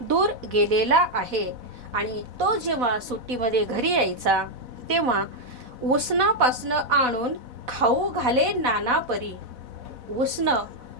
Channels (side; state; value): left; late; 4.1 ms